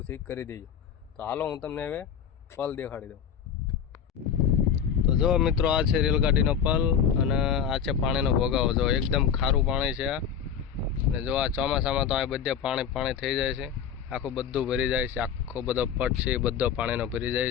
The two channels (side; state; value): right; quieter; 7.9 dB